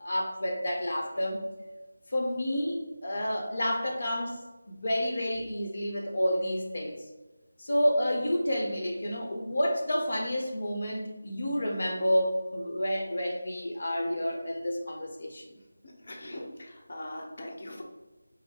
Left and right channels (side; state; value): both; inverted; correlation -0.95